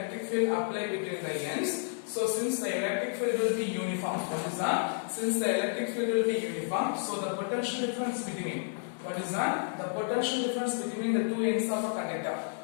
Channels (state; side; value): silent; right; digital silence